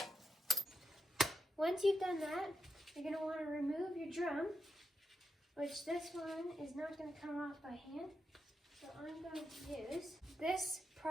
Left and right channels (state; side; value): normal; both; correlation 0.82